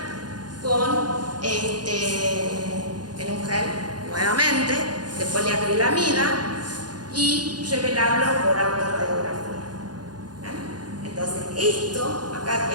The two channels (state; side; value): late; left; 0.69 ms